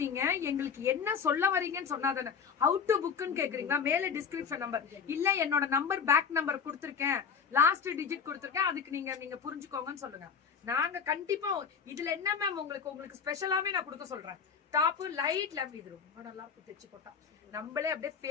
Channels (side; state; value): right; quieter; 6.5 dB